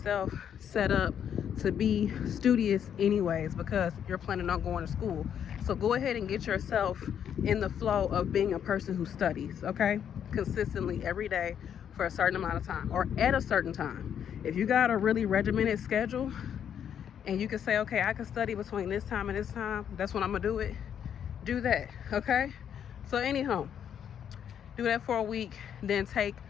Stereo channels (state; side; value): quieter; right; 8.8 dB